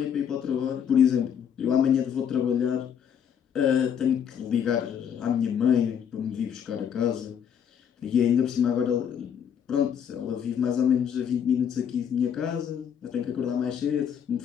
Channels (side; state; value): right; quieter; 8.3 dB